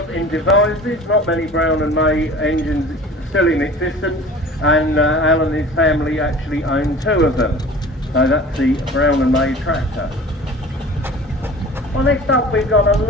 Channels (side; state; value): both; normal; correlation 0.42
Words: in Devizes. Not many Brown and May engines still in existence, and Alan and his family actually own 2 of them. So that's the Brown and May tractor. Well, next up we've got a